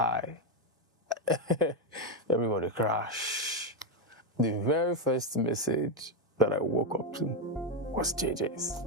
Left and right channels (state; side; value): normal; both; correlation 0.05